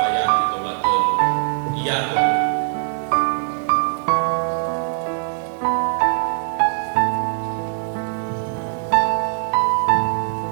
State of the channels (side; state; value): left; silent; digital silence